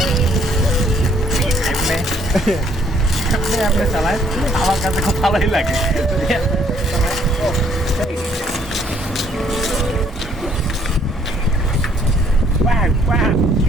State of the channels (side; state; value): both; normal; correlation 0.65